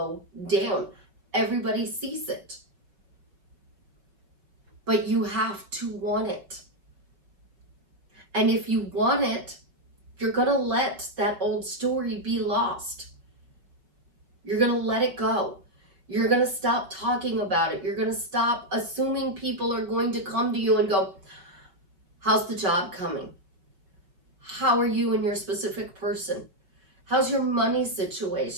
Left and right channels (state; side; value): late; left; 5.5 ms